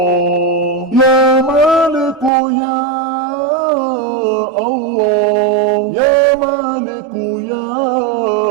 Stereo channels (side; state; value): left; drops out; at 2.3 s